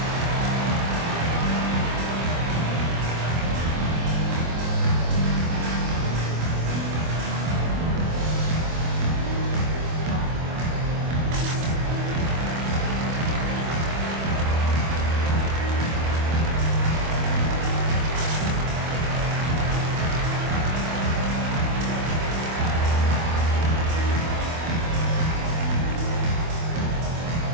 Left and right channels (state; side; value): late; left; 25 ms